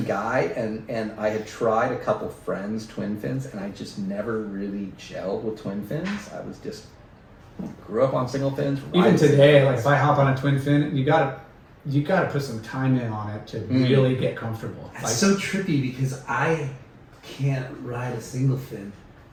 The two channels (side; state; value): both; identical; correlation 1.00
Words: guy, and I had tried a couple friends twin fins, and I just never really gelled with twin fins. I was just grew up on single fins. Even today, like if I hop on a twin fin, you gotta put some time in on it to really get comfortable. It's Like, so trippy because I can't ride a single fin